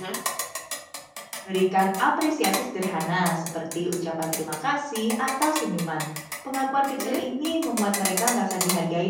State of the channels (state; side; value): identical; both; correlation 1.00